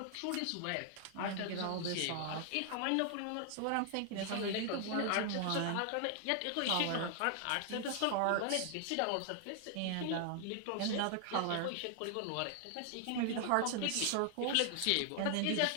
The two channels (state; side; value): different; both; correlation 0.00